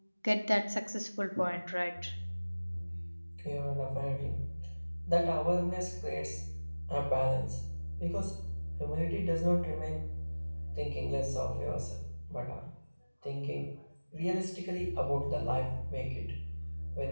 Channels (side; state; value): both; inverted; correlation -1.00